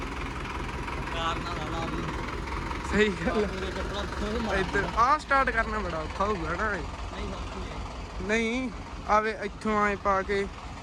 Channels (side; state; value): both; identical; correlation 1.00